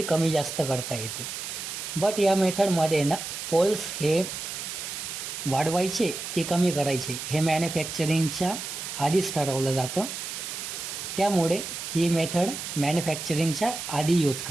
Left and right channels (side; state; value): right; noise; hiss, 7 dB below the sound